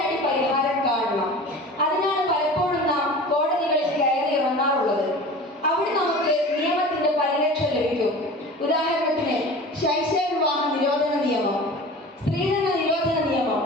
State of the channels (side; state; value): both; normal; correlation 0.37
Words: പരിഹാരം കാണണം. അതിനാണ് പലപ്പോഴും നാം കോടതികളിൽ കയറി ഇറങ്ങാറുള്ളത്. അവിടെ നമുക്ക് നിയമത്തിന്റെ പരിരക്ഷ ലഭിക്കും. ഉദാഹരണത്തിന് ശൈശവ വിവാഹ നിരോധന നിയമം, സ്ത്രീധന നിരോധന നിയമം,